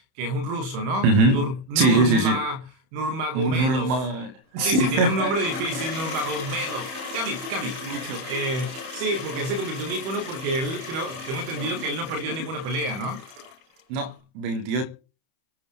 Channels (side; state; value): left; late; 30 ms